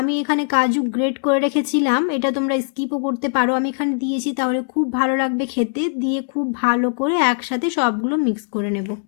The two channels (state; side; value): silent; right; 65 dB below the other